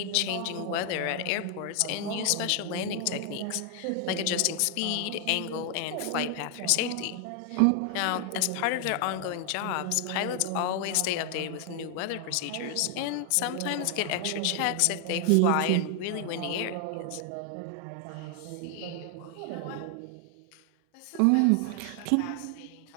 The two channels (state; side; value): different; both; correlation 0.00